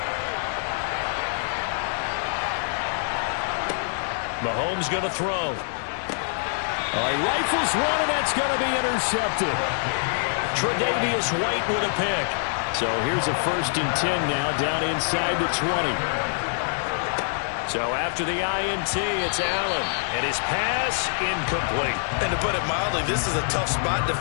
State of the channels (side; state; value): right; silent; 62 dB below the other